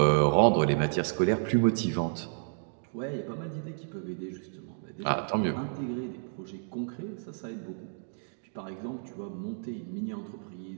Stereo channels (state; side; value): silent; left; digital silence